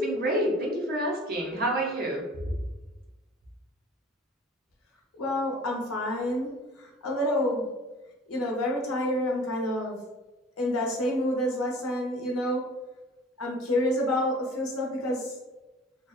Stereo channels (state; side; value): normal; both; correlation 0.45